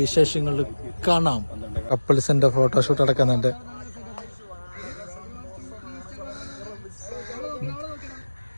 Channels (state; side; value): inverted; both; correlation -1.00